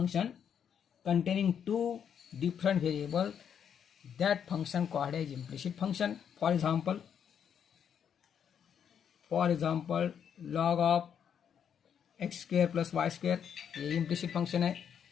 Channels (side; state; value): right; quieter; 8.2 dB